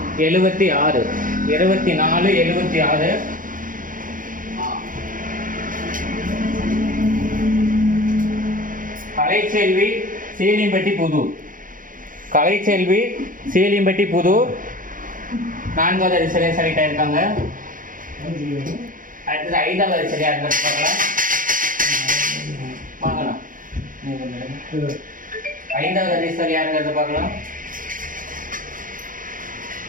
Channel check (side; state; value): left; late; 0.39 ms